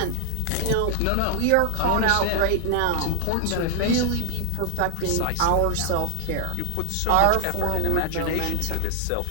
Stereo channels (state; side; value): different; both; correlation 0.00